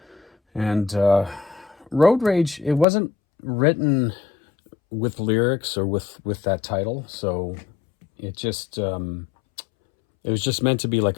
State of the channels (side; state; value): right; drops out; at 2.9 s